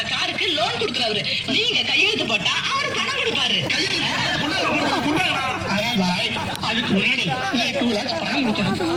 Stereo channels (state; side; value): identical; both; correlation 1.00